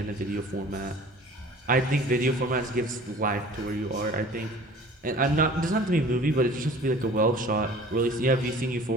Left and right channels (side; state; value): both; normal; correlation 0.46